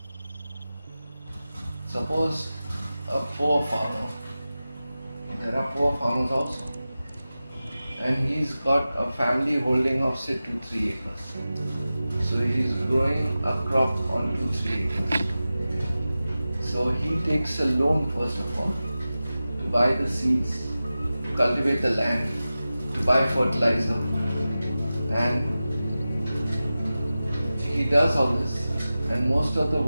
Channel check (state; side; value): inverted; both; correlation -0.95